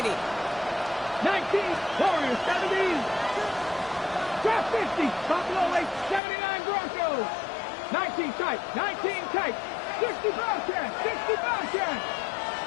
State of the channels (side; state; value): right; drops out; at 6.2 s